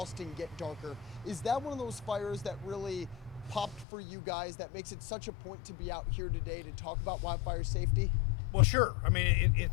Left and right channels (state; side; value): drops out; right; at 3.9 s